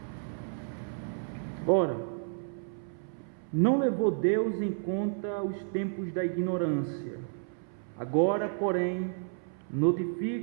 Ora, não levou Deus em conta os tempos da ignorância. Agora, porém,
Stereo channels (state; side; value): silent; left; 56 dB below the other